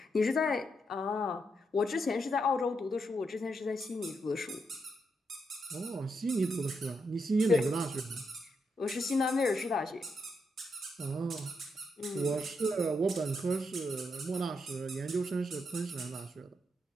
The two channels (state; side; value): normal; both; correlation 0.81